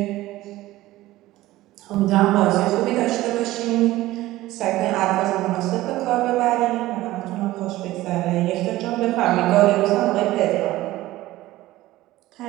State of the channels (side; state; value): left; quieter; 16.8 dB